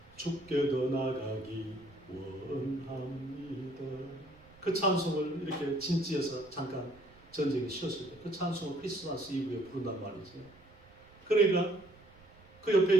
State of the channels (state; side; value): noise; right; rumble, 26 dB below the sound